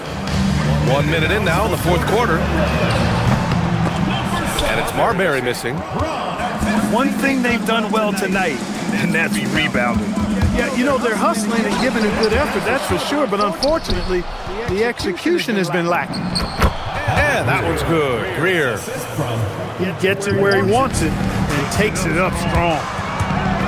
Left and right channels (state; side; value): identical; both; correlation 1.00